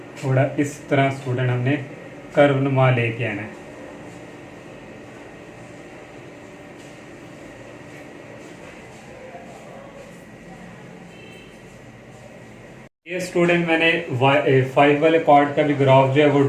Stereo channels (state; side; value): identical; both; correlation 1.00